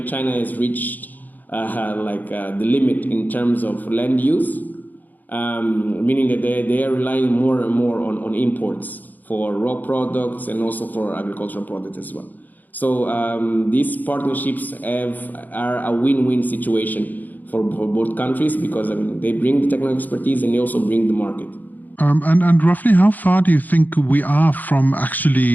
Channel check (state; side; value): late; right; 0.083 ms